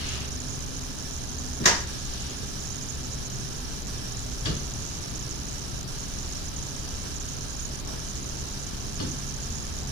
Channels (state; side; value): normal; both; correlation 0.30